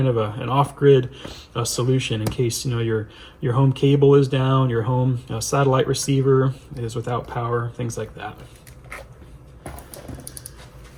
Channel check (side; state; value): both; identical; correlation 1.00